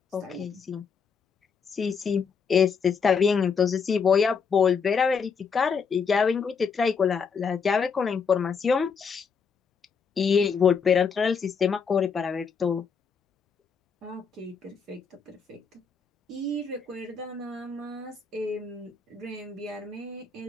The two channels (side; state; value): right; quieter; 5.9 dB